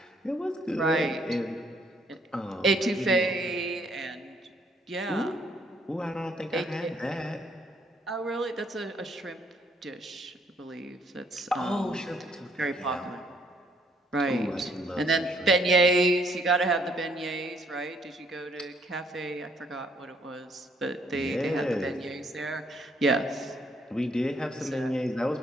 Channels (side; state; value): both; normal; correlation 0.68